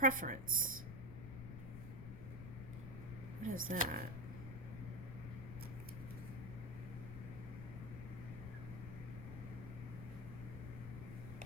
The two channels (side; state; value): left; noise; rumble, 7 dB below the sound